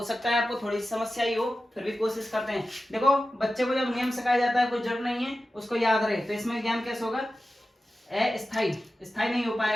सकता है आपको थोड़ी सी समस्या ही हो, फिर भी कोशिश करते हैं। देखो बच्चे को जब नियम सिखाया जाता है, कोई जरूरत नहीं है उसको याद रहे, तो इसमें ज्ञान कैसे होगा, स्थायी नहीं हो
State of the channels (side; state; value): both; normal; correlation 0.94